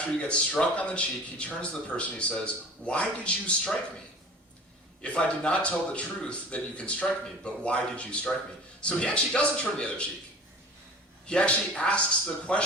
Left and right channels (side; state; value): both; normal; correlation 0.41